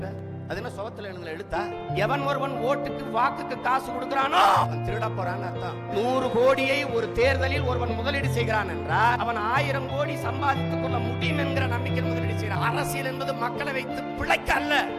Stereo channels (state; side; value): identical; both; correlation 1.00